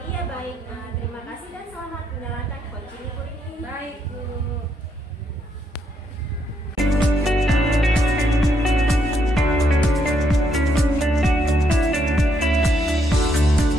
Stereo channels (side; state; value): both; normal; correlation 0.76